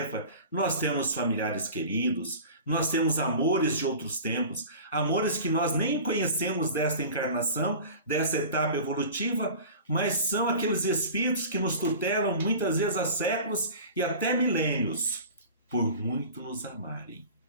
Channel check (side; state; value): both; inverted; correlation -0.38